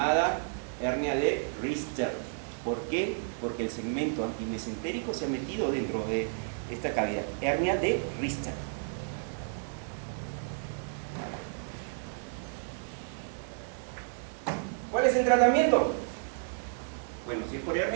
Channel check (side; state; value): left; silent; digital silence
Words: hernia de Richter. ¿Por qué? Porque el segmento antimesentérico se ha metido dentro de esta cavidad. Hernia de Richter. ¿Cuál es el tratamiento? Bueno, si es por